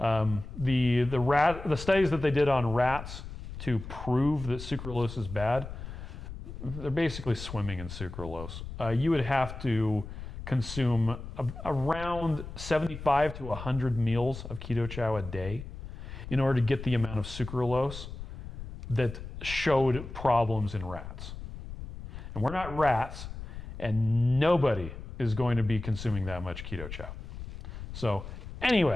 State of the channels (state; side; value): noise; left; rumble, 10 dB below the sound